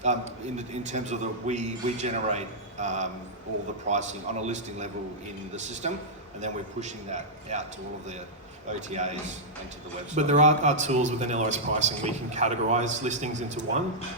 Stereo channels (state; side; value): normal; both; correlation -0.10